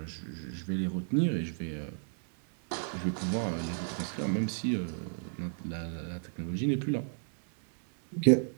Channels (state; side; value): silent; left; 56 dB below the other